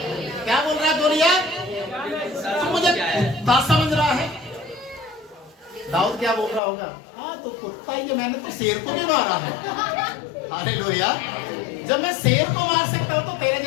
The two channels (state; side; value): drops out; right; at 6.6 s